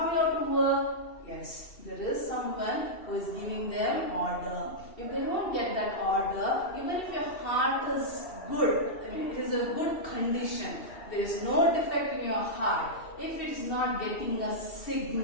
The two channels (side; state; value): right; late; 2.7 ms